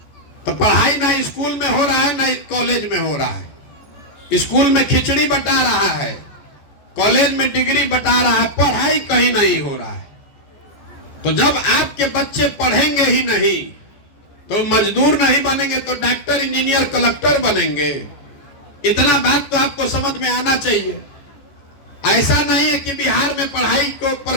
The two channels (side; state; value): right; late; 14 ms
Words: तो पढ़ाई ना स्कूल में हो रहा है ना कॉलेज में हो रहा है। स्कूल में खिचड़ी बटा रहा है, कॉलेज में डिग्री बटा रहा है, पढ़ाई कहीं नहीं हो रहा है। तो जब आपके बच्चे पढ़ेंगे ही नहीं तो मजदूर नहीं बनेंगे तो डॉक्टर, इंजीनियर, कलेक्टर बनेंगे। इतना बात तो आपको समझ में आना चाहिए। ऐसा नहीं है कि बिहार में पढ़ाई के ऊपर